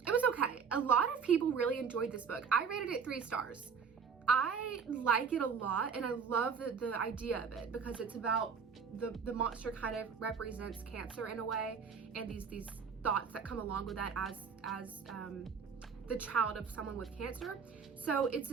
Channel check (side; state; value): left; quieter; 6.1 dB